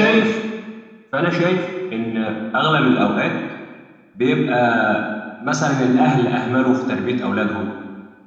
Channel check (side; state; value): both; identical; correlation 1.00